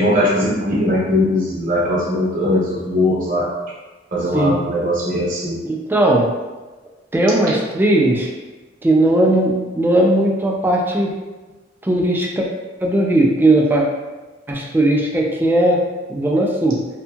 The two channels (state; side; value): normal; both; correlation 0.62